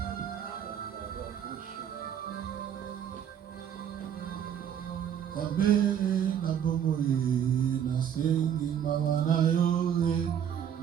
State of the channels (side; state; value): left; quieter; 9.1 dB